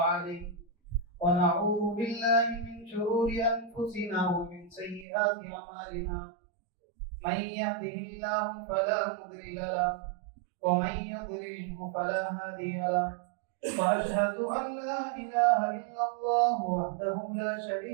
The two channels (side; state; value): left; drops out; at 5.1 s